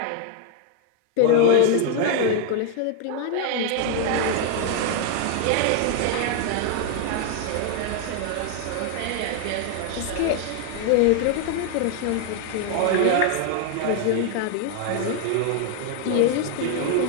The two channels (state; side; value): different; both; correlation 0.01